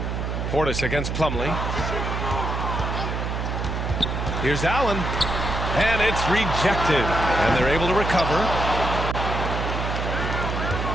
Portis against Plumlee. Here's Allen. And it's rejected. And they're able to recover.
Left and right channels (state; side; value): noise; right; hum, 2 dB below the sound